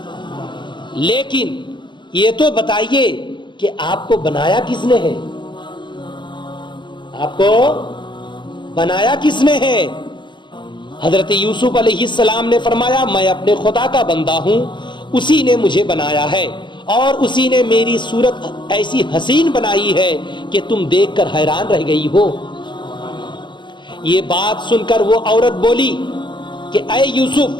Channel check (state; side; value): late; right; 0.23 ms